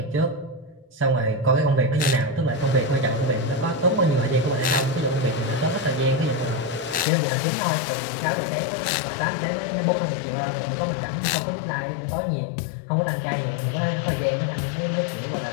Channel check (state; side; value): drops out; right; at 7.1 s